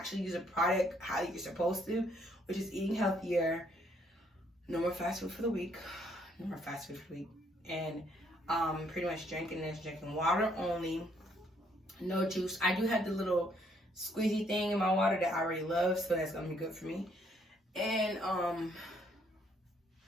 use a product how you're supposed to, which is eating healthier. No more fast food for the week. And pretty much drinking water only. No juice. I do have the little squeezy thing in my water that I already love, so that's gonna be good for me. And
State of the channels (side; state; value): both; normal; correlation 0.68